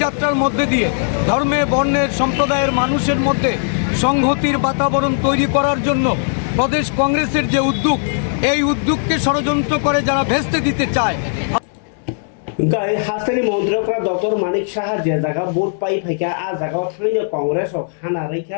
যাত্রার মধ্যে দিয়ে ধর্মে, বর্ণের, সম্প্রদায়ের মানুষের মধ্যে সংহতির বাতাবরণ তৈরি করার জন্য প্রদেশ কংগ্রেসের যে উদ্যোগ, এই উদ্যোগকে ষড়যন্ত্র করে যারা ভেস্তে দিতে চায়। হাস্তানি মন্ত্রীরা ডক্টর মানিক সাহা যে জায়গা ভোট পাই ফাইকা আ জায়গাও থাইनो কংগ্রেস হানা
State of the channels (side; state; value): right; silent; digital silence